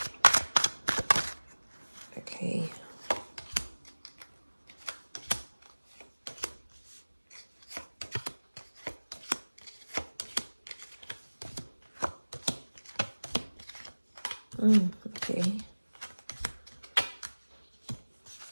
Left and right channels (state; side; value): inverted; both; correlation -1.00